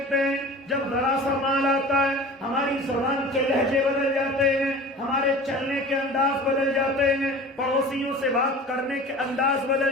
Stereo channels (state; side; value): normal; both; correlation 0.39